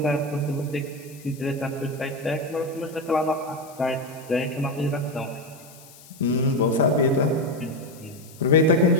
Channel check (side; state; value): left; noise; hiss, 22 dB below the sound